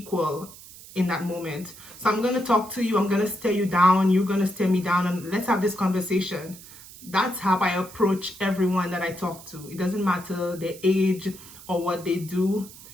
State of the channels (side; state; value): right; noise; hiss, 18 dB below the sound